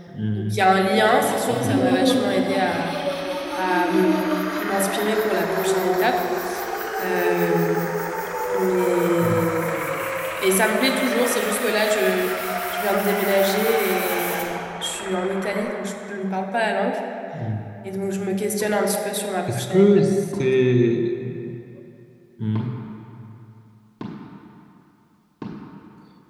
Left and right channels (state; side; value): identical; both; correlation 1.00